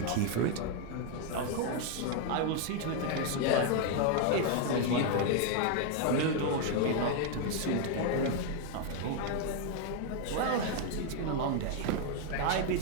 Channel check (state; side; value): different; both; correlation 0.01